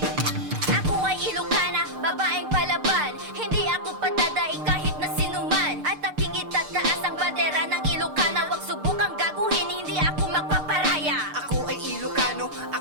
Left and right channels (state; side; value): late; left; 6.6 ms